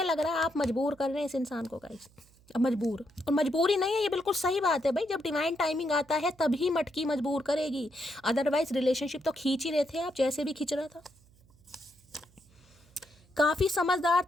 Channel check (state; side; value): noise; right; hum, 29 dB below the sound